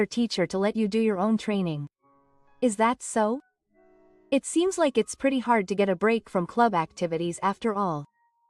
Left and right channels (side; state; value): both; identical; correlation 1.00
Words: teacher to let you do your own training. Is that so? It seems like it's pretty hard to get a break from club activities after all.